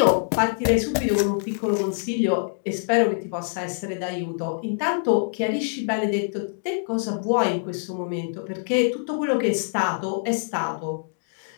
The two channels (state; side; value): silent; right; digital silence